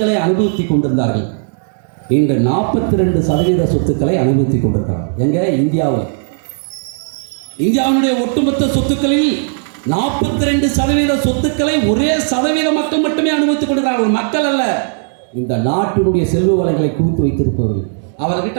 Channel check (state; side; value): silent; left; 70 dB below the other